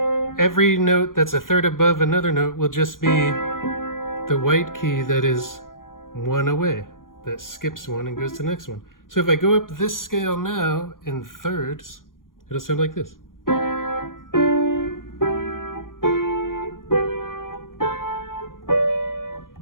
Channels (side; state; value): right; late; 0.90 ms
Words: every note that's a third above another note will just be the white key that is one away, that skips one and goes to the next one. So if I go up this scale now in thirds, it'll sound like this.